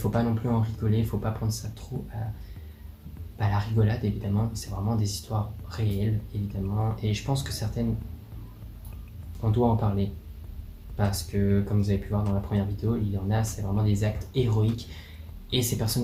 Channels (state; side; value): identical; both; correlation 1.00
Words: pas non plus en rigoler, il ne faut pas prendre ça trop à la rigolade, évidemment. C'est vraiment des histoires réelles, évidemment. Et je pense que certaines, on doit en parler. Parce que, comme vous avez pu voir dans la première vidéo, il y en a, c'est vraiment des actes héroïques. Et ces